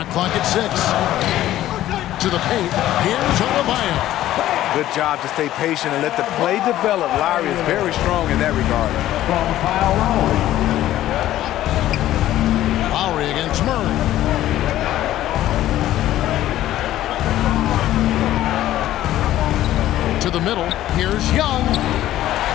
clock at 6. To the paint. Here's Adebayo. Good job to stay patient and let the play develop. Lowry is very strong in that regard. From Kyle Lowry. Lowry against Murray. To the middle. Here's Young.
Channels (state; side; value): quieter; right; 13.7 dB